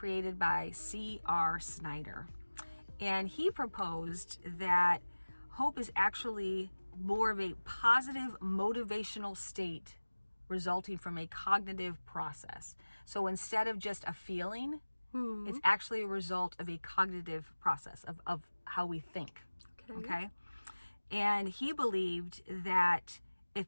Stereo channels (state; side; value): inverted; both; correlation -1.00